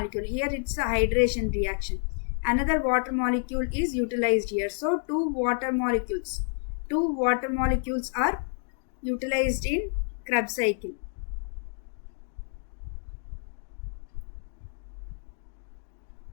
Here it's a hydration reaction. Another water molecule is utilized here. So two water molecules are utilized in Krebs cycle.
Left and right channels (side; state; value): right; silent; digital silence